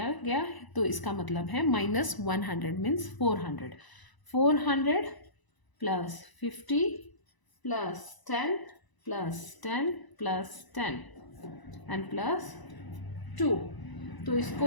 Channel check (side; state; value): right; late; 1.0 ms